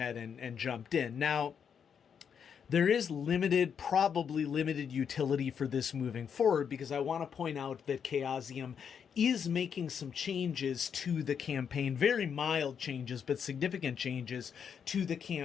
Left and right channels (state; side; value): quieter; right; 7.4 dB